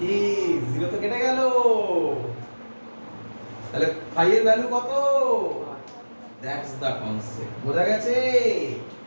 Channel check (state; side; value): inverted; both; correlation -1.00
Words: 0 তো কেটে গেল, তাহলে phi এর ভ্যালু কত? দ্যাটস দ্য কনসেপ্ট, বোঝা গেছে?